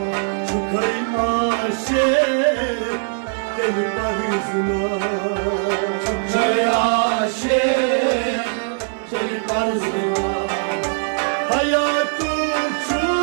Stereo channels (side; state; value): left; silent; 58 dB below the other